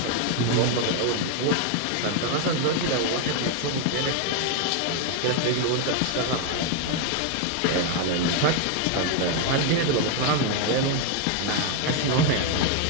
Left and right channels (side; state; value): both; different; correlation 0.01